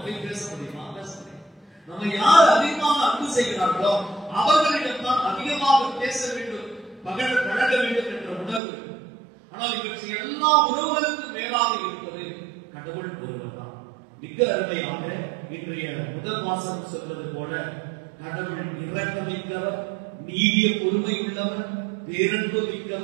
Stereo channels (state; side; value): drops out; left; at 8.6 s